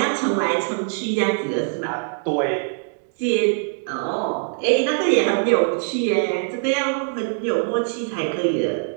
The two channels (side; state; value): left; silent; 62 dB below the other